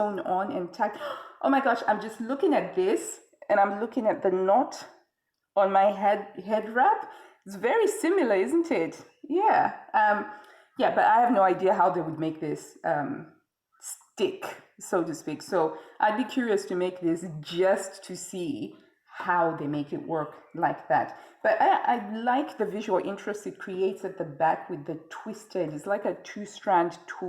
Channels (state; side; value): identical; both; correlation 1.00